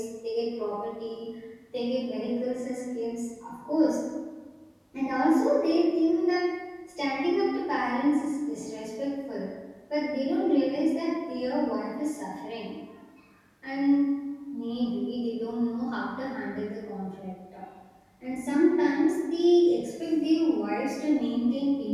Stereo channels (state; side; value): identical; both; correlation 1.00